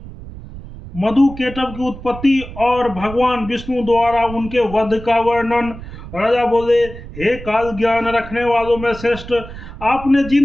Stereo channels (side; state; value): right; noise; rumble, 13 dB below the sound